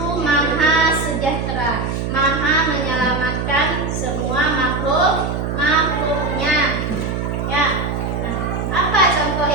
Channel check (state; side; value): noise; right; hum, 2 dB below the sound